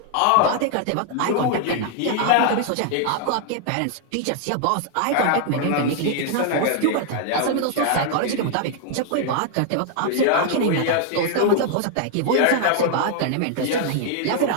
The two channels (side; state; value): both; different; correlation 0.00